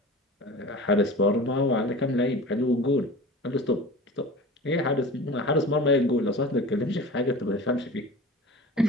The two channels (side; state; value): both; normal; correlation 0.37